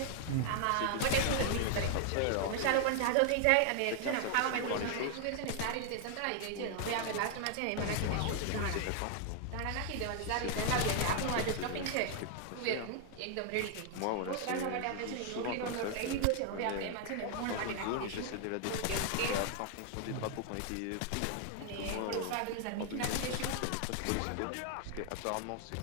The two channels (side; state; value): both; different; correlation 0.00